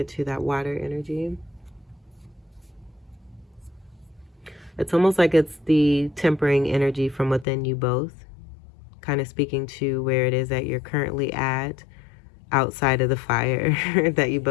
to that water energy. It's almost like it's the tempering energy from within you both, kind of speaking to where it is that you're currently at, outside of the fire that you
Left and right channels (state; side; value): drops out; right; at 7.5 s